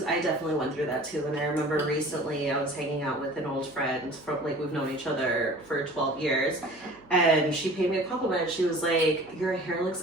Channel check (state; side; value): noise; right; hum, 27 dB below the sound